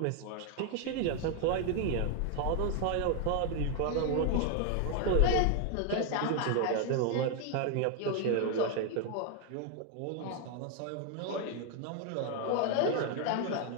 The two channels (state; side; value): different; both; correlation 0.00